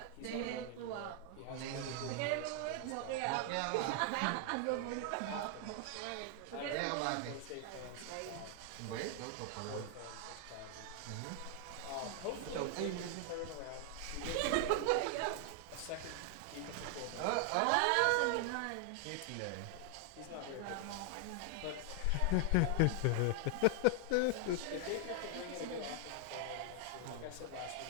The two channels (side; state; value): both; different; correlation 0.00